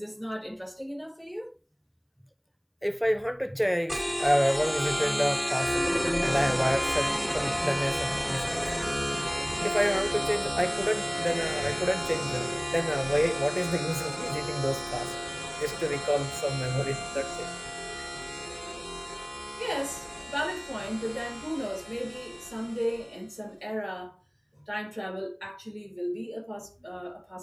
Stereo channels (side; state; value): both; identical; correlation 1.00